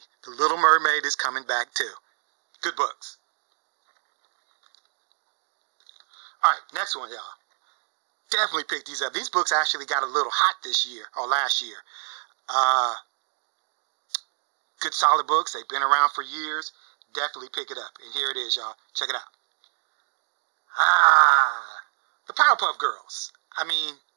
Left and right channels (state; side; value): silent; left; digital silence